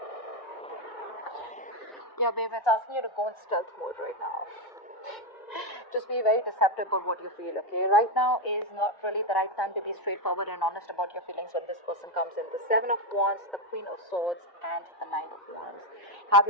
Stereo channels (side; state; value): right; late; 1.0 ms